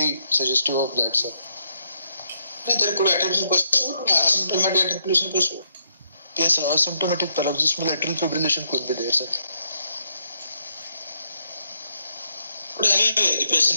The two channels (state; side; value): inverted; both; correlation -0.75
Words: suggestive of that, sir. There could be atrial pursuit, asymptomatic atrial pursuit. Yes, sir. Asymptomatic paroxysmal atrial fibrillation could be there, sir. But anyway, the